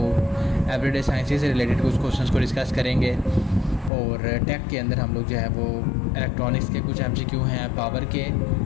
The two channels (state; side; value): drops out; right; at 3.9 s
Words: एवरीडे साइंसेस से रिलेटेड कुछ क्वेश्चंस को डिस्कस करेंगे। और टेक के अंदर हम लोग जो है वो इलेक्ट्रॉनिक्स के कुछ MCQ हैं, पावर के,